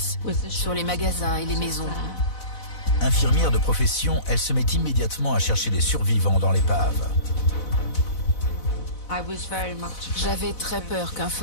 sur les magasins et les maisons. Infirmière de profession, elle se met immédiatement à chercher des survivants dans l'épave. J'avais très peur qu'un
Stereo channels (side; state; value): right; late; 4.0 ms